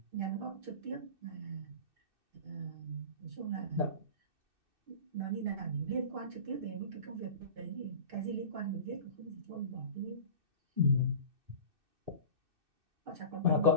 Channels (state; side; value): late; left; 2.6 ms